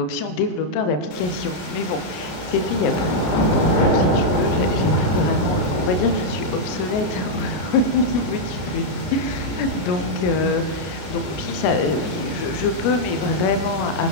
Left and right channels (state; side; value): late; right; 32 ms